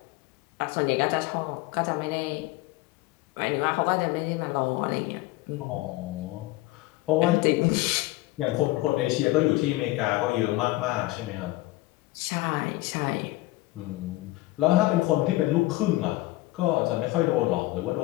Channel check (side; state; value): right; quieter; 19.2 dB